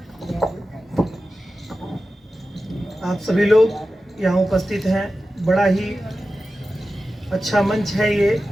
आप सभी लोग यहाँ उपस्थित हैं। बड़ा ही अच्छा मंच है ये,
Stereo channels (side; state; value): both; normal; correlation 0.93